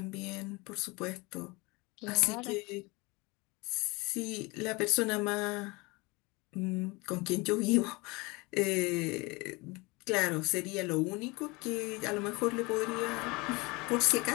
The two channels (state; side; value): quieter; right; 25.4 dB